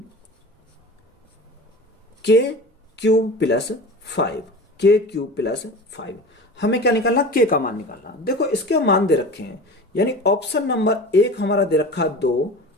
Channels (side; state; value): both; normal; correlation 0.34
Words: k cube plus 5 हमें क्या निकालना k का मान निकालना। देखो इसके मान दे रखे हैं, यानी ऑप्शन नंबर 1 हमारा दे रखा 2,